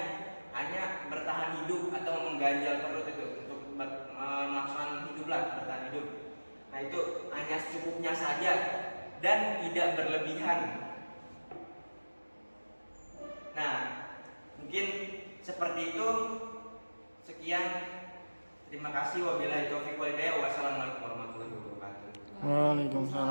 hanya bertahan hidup atau mengganjal perut itu untuk melaksanakan bertahan hidup. Nah, itu hanya secukupnya saja dan tidak berlebihan. Nah, Mungkin seperti itu. Sekian. Terima kasih. Wabillahi taufiq wal hidayah. Wassalamualaikum warahmatullahi wabarakatuh.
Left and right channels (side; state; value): both; inverted; correlation -1.00